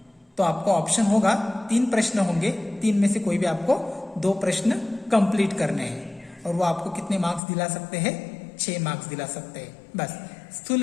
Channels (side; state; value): right; drops out; at 7.4 s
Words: तो आपको ऑप्शन होगा 3 प्रश्न होंगे, 3 में से कोई भी आपको 2 प्रश्न कंप्लीट करने हैं, और वो आपको कितने मार्क्स दिला सकते हैं, 6 मार्क्स दिला सकते हैं। बस स्थूल